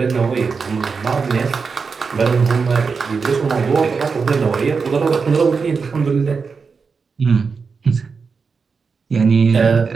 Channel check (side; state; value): left; quieter; 5.1 dB